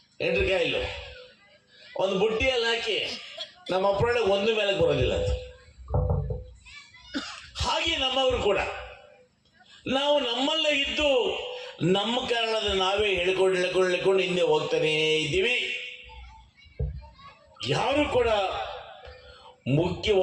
ಎಂಡ್ರಿಕಾಯಿಲು ಒಂದು ಬುಟ್ಟಿಯಲ್ಲಿ ಹಾಕಿ ನಮ್ಮ ಅಪ್ಪಳೆ ಒಂದು ಮೇಲಕ್ಕೆ ಬರೋದಿಲ್ಲ ಅದು. ಹಾಗೆ ನಮ್ಮವರು ಕೂಡ ನಾವು ನಮ್ಮಲ್ಲೇ ಇದ್ದು ನಮ್ಮ ಕಾರಣದ ನಾವೇ ಹೇಳ್ಕೊಂಡು ಹಿಂದೆ ಹೋಗ್ತಾನೇ ಇದ್ದೀವಿ. ಯಾರು ಕೂಡ ಮುಖ್ಯ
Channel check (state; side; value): identical; both; correlation 1.00